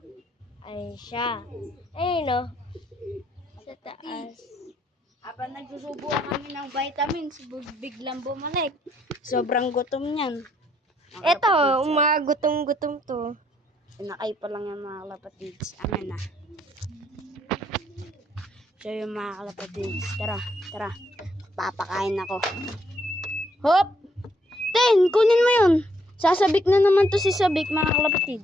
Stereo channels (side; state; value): both; normal; correlation 0.70